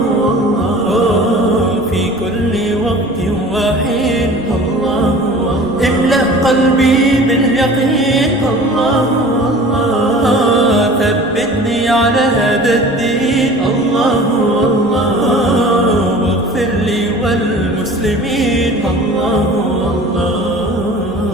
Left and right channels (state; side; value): normal; both; correlation 0.43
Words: الله، في كل وقت وحين الله، املأ قلبي باليقين الله، الله، ثبتني على هذا الدين الله، الله، واغفر لي والمسلمين الله، الله.